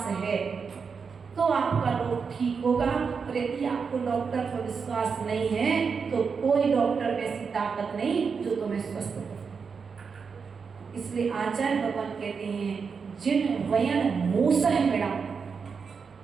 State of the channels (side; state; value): left; quieter; 5.7 dB